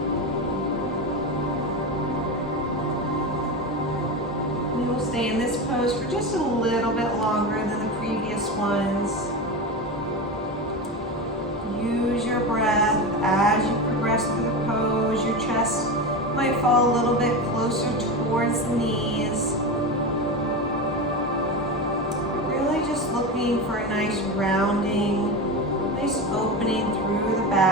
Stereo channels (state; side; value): normal; both; correlation 0.21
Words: We will stay in this pose for just a little bit longer than the previous ones. Use your breath as you progress through the pose. Your chest might fall a little bit closer towards the knees. Really just looking for a nice rounding, nice opening through the